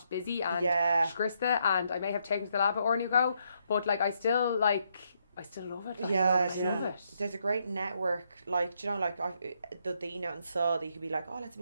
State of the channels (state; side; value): inverted; both; correlation -0.76